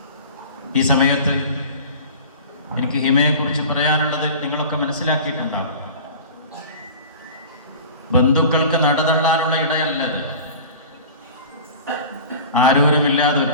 ഈ സമയത്ത് എനിക്ക് ഹിമയെക്കുറിച്ച് പറയാനുള്ളത് നിങ്ങളൊക്കെ മനസ്സിലാക്കിയിട്ടുണ്ടാവും. ബന്ധുക്കൾക്ക് നടതള്ളാനുള്ള ഇടയല്ലത്. ആരോരുമില്ലാതെ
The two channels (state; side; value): inverted; both; correlation -0.38